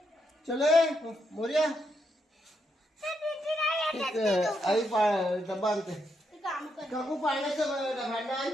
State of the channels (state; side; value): normal; both; correlation 0.80